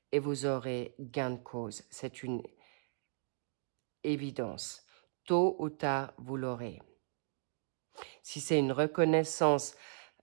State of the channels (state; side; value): silent; left; digital silence